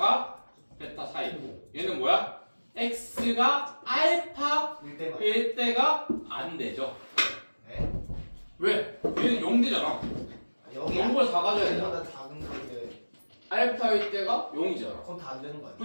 베타 사이고 얘는 뭐야? x가 알파 1대만. 1 때가 안 되죠. 네? 왜? 얘는 0 되잖아. 여기 0보다 작아져야 되잖아. 보다 작은 건데 알파일 때가 0이잖아. 그건 다 안 되는 거 아니야?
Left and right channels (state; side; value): inverted; both; correlation -1.00